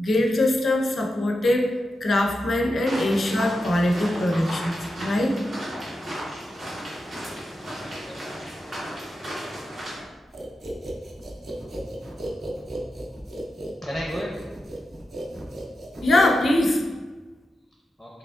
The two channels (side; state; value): both; normal; correlation 0.89